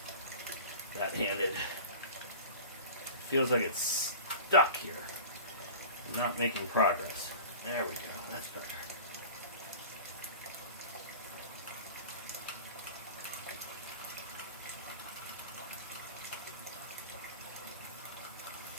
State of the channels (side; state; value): both; inverted; correlation -0.37